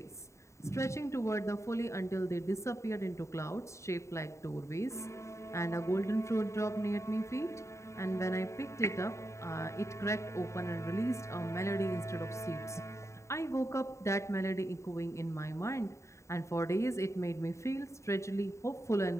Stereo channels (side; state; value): right; late; 0.14 ms